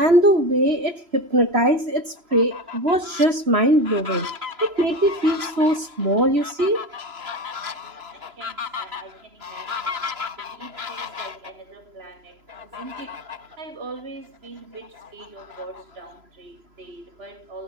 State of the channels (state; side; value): late; left; 3.0 ms